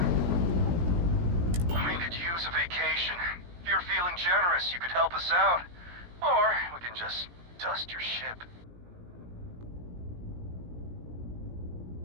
We could use a vacation. If you're feeling generous, you could help us out. Or we can just dust your ship.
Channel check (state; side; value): late; left; 17 ms